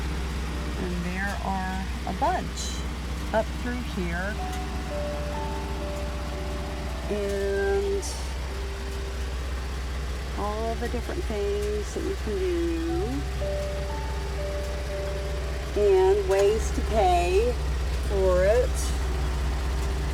And there are a bunch up through here. And all the different things that you can do. And ways to pay for it.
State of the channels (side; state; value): both; identical; correlation 1.00